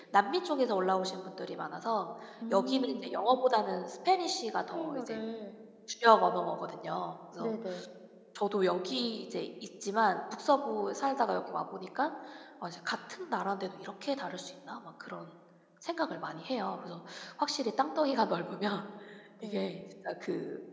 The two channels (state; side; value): identical; both; correlation 1.00